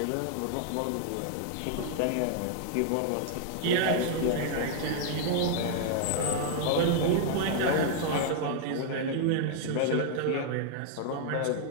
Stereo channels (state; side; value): different; both; correlation -0.01